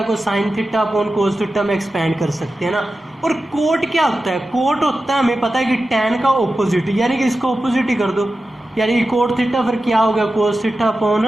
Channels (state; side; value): normal; both; correlation 0.93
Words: को sine theta upon cos theta में एक्सपेंड कर सकते हैं ना। और कोट क्या होता है, कोट होता है, हमें पता है कि टैन का ऑपोजिट, यानी कि इसको ऑपोजिट ही कर दो, यानी कि कोट थीटा फिर क्या हो गया, कोस थीटा